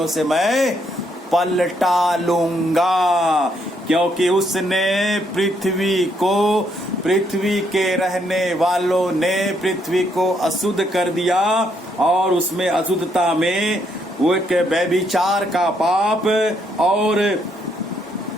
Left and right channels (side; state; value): both; normal; correlation 0.73